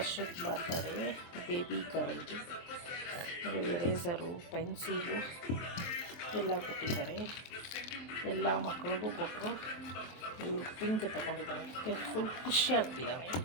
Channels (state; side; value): late; right; 23 ms